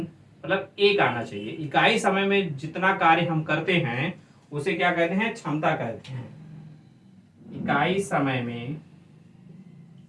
मतलब एक आना चाहिए। इकाई समय में जितना कार्य हम करते हैं उसे क्या कहते हैं, क्षमता कहते हैं। इकाई समय में,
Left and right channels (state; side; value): identical; both; correlation 1.00